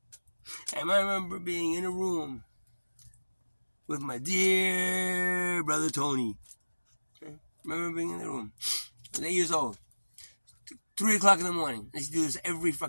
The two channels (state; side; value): inverted; both; correlation -1.00